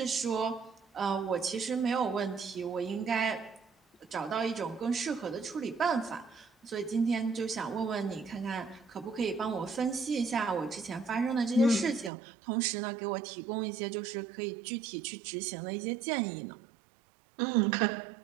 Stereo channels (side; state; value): left; drops out; at 12.1 s